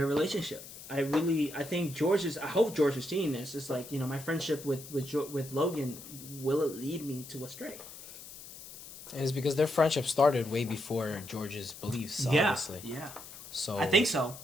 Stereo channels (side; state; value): left; noise; hiss, 15 dB below the sound